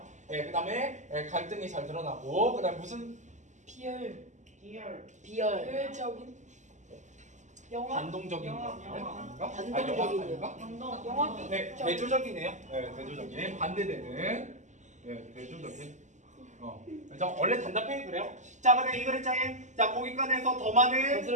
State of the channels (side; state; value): left; late; 0.34 ms